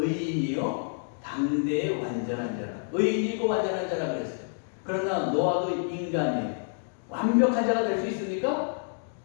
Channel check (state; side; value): silent; right; digital silence